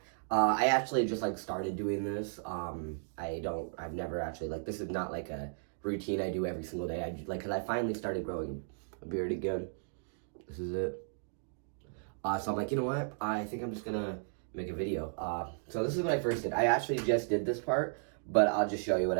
I actually just started doing this. I've never actually, this is not like a routine I do every single day. Cause I finally started growing a beard again. This is it. So I'm like, you know what, I think I'm just gonna make a video. So this is what I first did. I actually just did this part, but I'll just show you what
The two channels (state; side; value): silent; left; digital silence